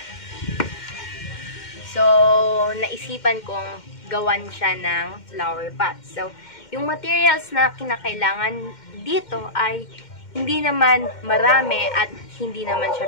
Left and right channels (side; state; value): right; late; 2.1 ms